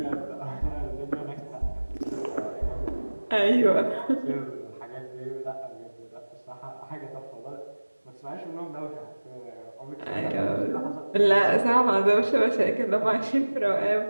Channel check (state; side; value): inverted; both; correlation -1.00